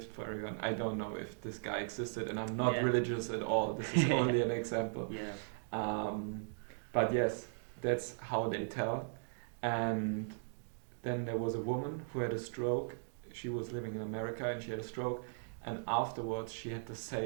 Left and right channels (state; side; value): silent; left; digital silence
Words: for everyone. I don't know if this guy existed, and I'm not religious at all. This is only an example. But yes, that's how they tell. And then there was a woman who had a stroke. She was living in America, and she had a stroke. And afterwards, she had the